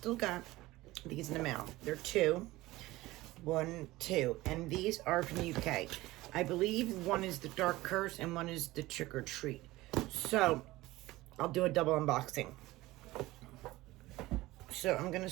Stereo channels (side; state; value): left; quieter; 18.5 dB